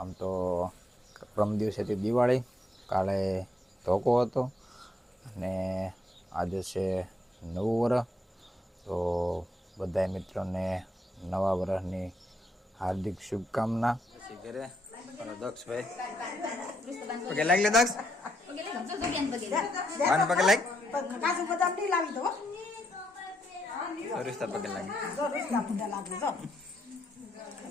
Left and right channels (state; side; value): normal; both; correlation 0.77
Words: તો પ્રમ દિવસેથી દિવાળી, કાલે ધોકો હતો અને આજે છે નવું વર્ષ. તો બધા મિત્રોને નવા વર્ષની હાર્દિક શુભકામના. ઘરે દક્ષભાઈ પગે લાગ લે દક્ષ વાન પગે લાગ કાજુ બદામ ની લાવી દો સરિસ્તા પગે લાગ સરિસ્તા પગે લાગ જો